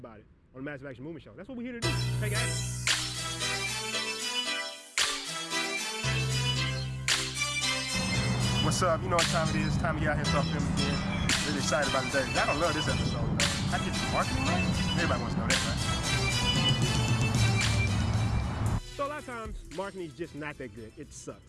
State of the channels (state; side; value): identical; both; correlation 1.00